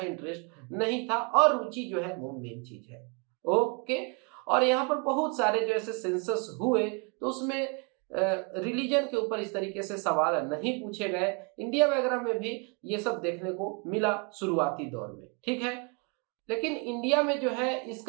इंटरेस्ट नहीं था, और रुचि जो है वो मेन चीज है। ओके, और यहाँ पर बहुत सारे जो ऐसे सेंसस हुए तो उसमें रिलीजन के ऊपर इस तरीके से सवाल नहीं पूछे गए। इंडिया वगैरह में भी ये सब देखने को मिला शुरुआती दौर में। ठीक है, लेकिन इंडिया में जो है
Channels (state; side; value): quieter; left; 34.6 dB